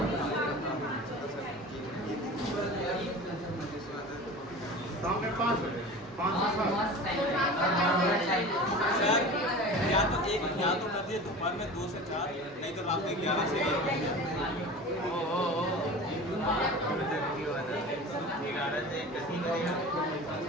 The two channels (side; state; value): both; normal; correlation 0.35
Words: शाम में 5 बजे, 5 से 7। सर या तो कर दिए दोपहर में 2 से 4 नहीं तो रात में 11 से